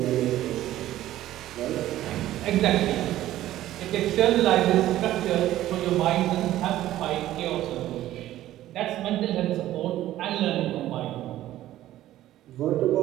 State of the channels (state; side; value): quieter; left; 14.0 dB